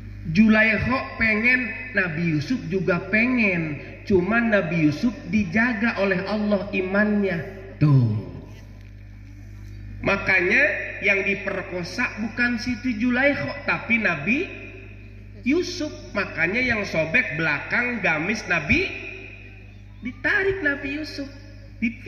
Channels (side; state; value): both; identical; correlation 1.00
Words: Zulaikha pengen, Nabi Yusuf juga pengen. Cuman Nabi Yusuf dijaga oleh Allah imannya. Tuh. Makanya yang diperkosa bukan Siti Zulaikha, tapi Nabi Yusuf. Makanya yang sobek belakang gamis Nabi, ditarik Nabi Yusuf,